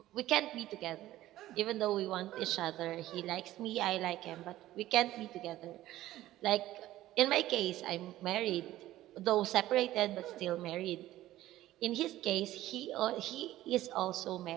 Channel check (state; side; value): quieter; left; 14.9 dB